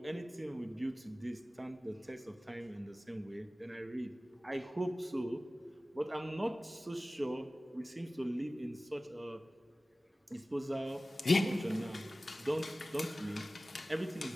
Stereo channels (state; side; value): normal; both; correlation 0.97